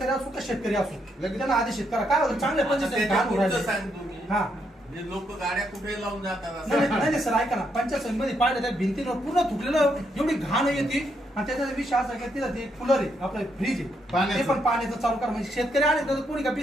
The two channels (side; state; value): both; normal; correlation 0.77